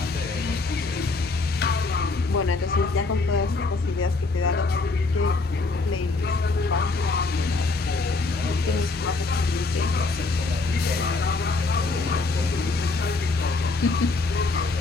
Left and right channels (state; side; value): quieter; right; 3.7 dB